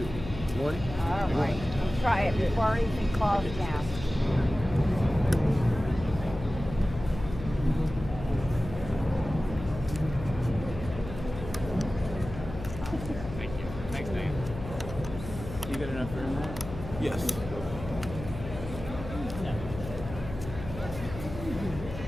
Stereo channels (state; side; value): noise; left; hum, 10 dB below the sound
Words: 1. All right. Let's try it before anything calls down. Thank you. Thanks, Dan. You got enough room there? Yes.